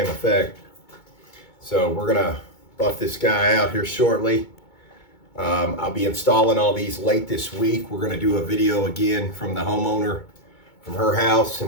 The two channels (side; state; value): right; late; 2.2 ms